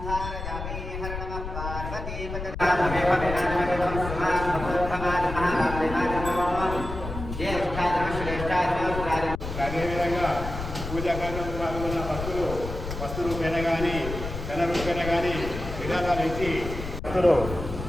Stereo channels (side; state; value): left; noise; rumble, 7 dB below the sound